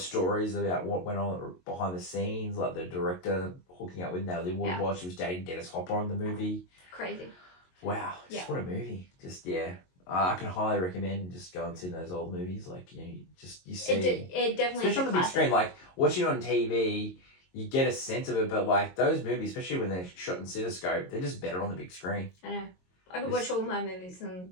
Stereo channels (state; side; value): late; right; 22 ms